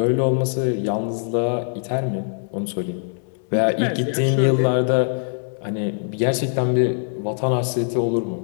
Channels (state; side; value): silent; right; 64 dB below the other